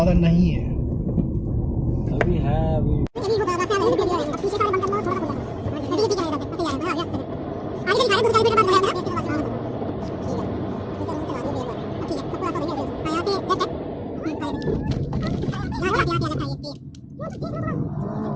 नहीं है। अभी है, अभी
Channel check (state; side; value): identical; both; correlation 1.00